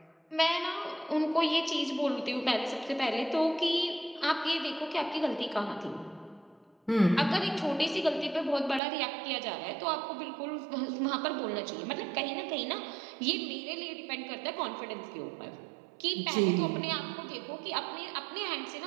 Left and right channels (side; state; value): left; drops out; at 8.8 s